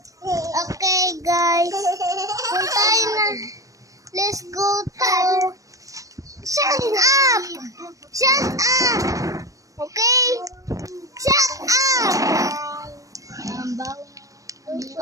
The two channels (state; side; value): late; left; 0.16 ms